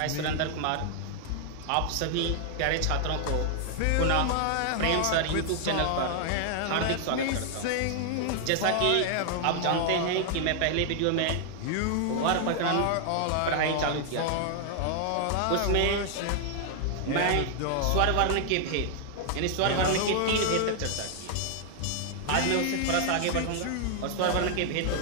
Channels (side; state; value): both; different; correlation 0.00